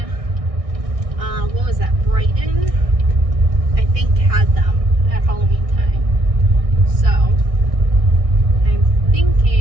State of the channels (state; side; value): late; left; 1.6 ms